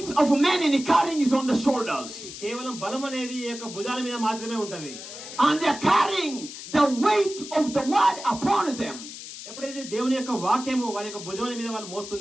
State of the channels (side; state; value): left; noise; hiss, 12 dB below the sound